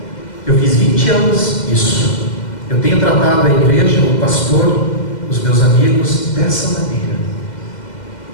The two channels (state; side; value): late; right; 2.1 ms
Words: Eu fiz 20 anos isso. Eu tenho tratado a igreja, o pastor, os meus amigos, dessa maneira.